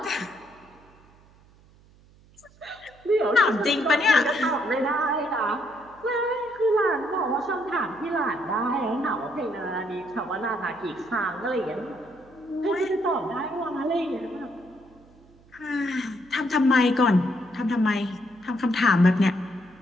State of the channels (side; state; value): right; noise; hum, 27 dB below the sound